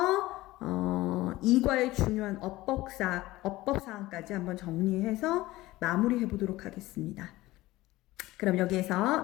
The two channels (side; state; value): right; quieter; 18.1 dB